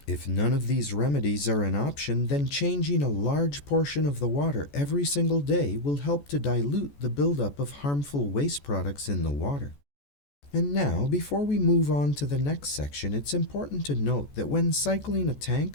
If none of these remedies are an option, then changing a large portion of the water every single day will help to dilute the buildup of harmful waste products in the water. And now, before we move on to the next section, it's important to note that when cycling a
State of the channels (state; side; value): late; right; 14 ms